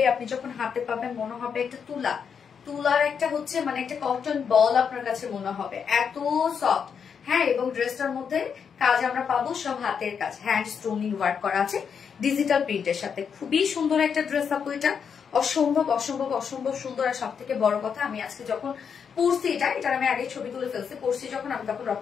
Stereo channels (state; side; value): quieter; right; 6.9 dB